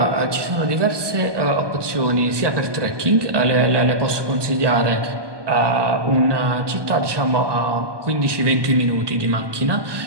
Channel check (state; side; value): late; left; 1.2 ms